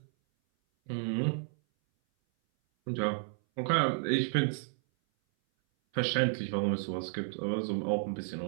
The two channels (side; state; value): left; silent; 56 dB below the other